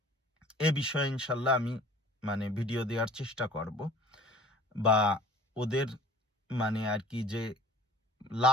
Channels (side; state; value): both; normal; correlation 0.48